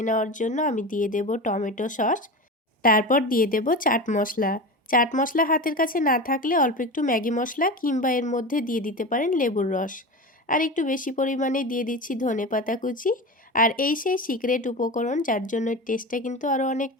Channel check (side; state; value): both; normal; correlation 0.26